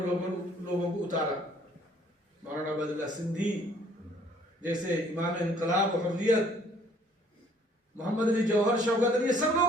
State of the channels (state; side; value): normal; both; correlation 0.60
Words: لوگوں کو اتارا. مولانا عبد اللہ سندھی جیسے امام انقلاب و حریت، محمد علی جوہر، شوکت علی، یہ سب